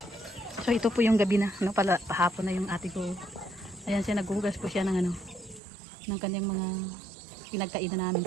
So, ito po yung gabi na. Pahapon na yung ate ko. Ayan siya, naghuhugas po siya ng ng kanyang mga pinagkainan namin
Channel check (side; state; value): left; drops out; at 5.6 s